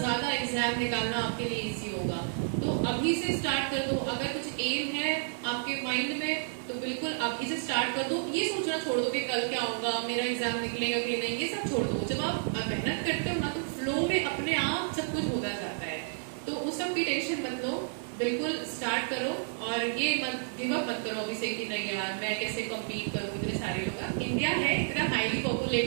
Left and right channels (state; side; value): silent; left; digital silence